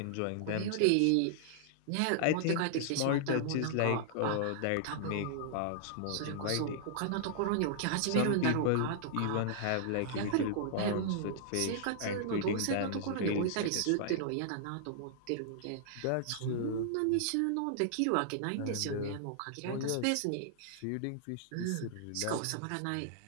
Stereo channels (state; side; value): different; both; correlation -0.01